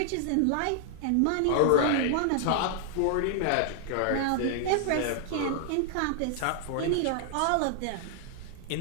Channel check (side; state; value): both; different; correlation 0.00